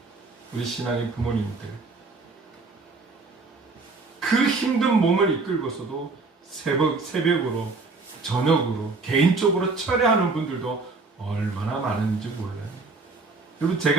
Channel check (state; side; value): quieter; left; 3.8 dB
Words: 우리 신앙의 부모님들, 그 힘든 몸을 이끌고서도 새벽으로, 저녁으로, 개인적으로 철회하는 분들도 얼마나 많은지 몰라요. 여러분,